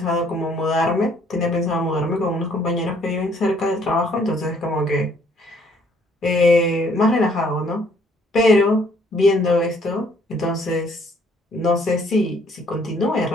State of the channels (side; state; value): both; normal; correlation 0.63